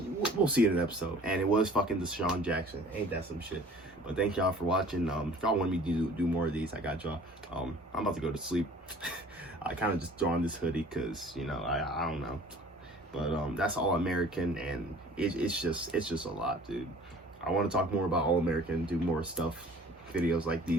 we'll see in an episode. And it was fucking Deshaun Jackson. Ain't that some shit? But thank y'all for watching. If y'all want me to do more of these, I got y'all. I'm about to go to sleep. I kind of just throw on this hoodie because, you know, I don't know. But that's All American, and it's just a lot, dude. I want to talk more about All American, do more stuff, videos like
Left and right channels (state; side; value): normal; both; correlation 0.49